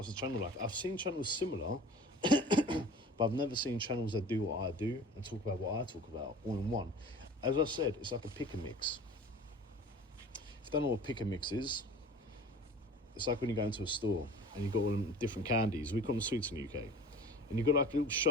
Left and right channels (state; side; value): normal; both; correlation 0.41